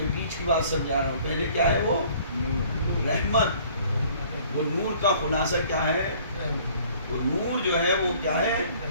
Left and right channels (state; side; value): inverted; both; correlation -0.55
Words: بیچ کی بات سمجھا رہا ہوں. پہلے کیا ہے وہ؟ رحمت. وہ نور کا خلاصہ کیا ہے؟ وہ نور جو ہے وہ کیا ہے؟